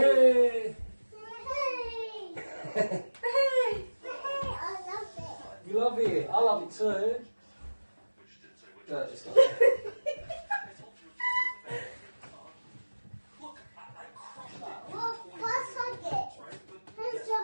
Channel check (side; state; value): both; inverted; correlation -1.00